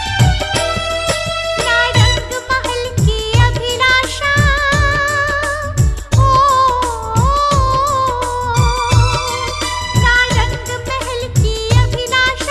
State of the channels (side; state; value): both; identical; correlation 1.00